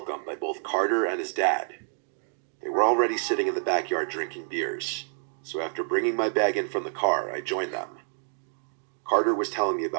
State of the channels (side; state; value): left; silent; digital silence